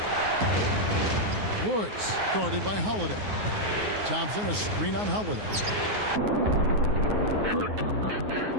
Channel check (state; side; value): late; left; 9.5 ms